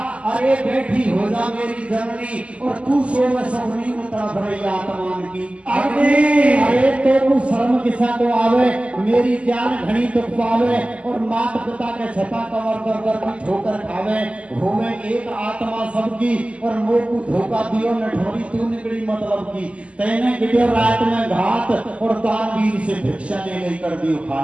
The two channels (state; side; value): late; left; 0.059 ms